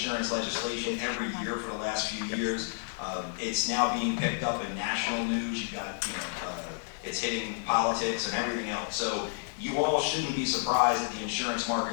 legislation every year for the last few years. It's now being picked up in national news. You've got, it's hitting politics and everything else. So you all shouldn't be surprised that the insurance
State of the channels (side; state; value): right; silent; 57 dB below the other